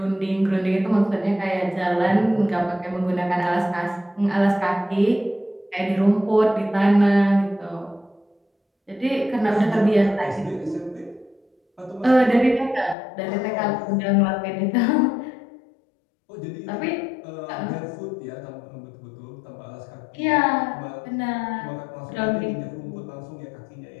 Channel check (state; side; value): drops out; right; at 13.0 s